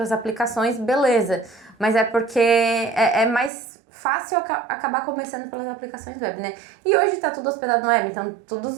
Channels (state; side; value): drops out; left; at 3.5 s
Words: aplicações, beleza. Mas é porque é mais fácil acabar começando pelas aplicações web, né? E hoje tá tudo hospedado no web, então todos